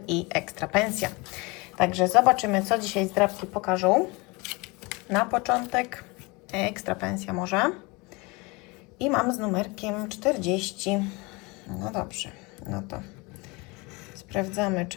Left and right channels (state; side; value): quieter; right; 26.3 dB